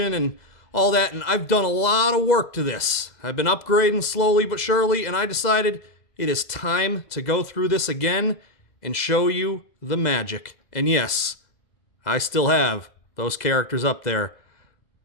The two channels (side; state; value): right; late; 2.0 ms